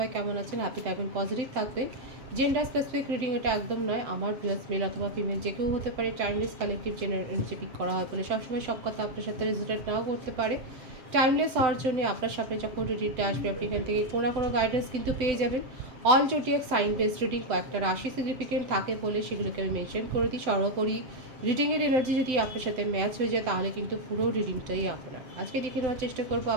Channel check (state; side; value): late; left; 7.8 ms